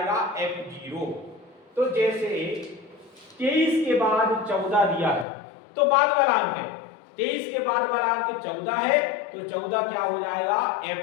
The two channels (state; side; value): drops out; right; at 5.2 s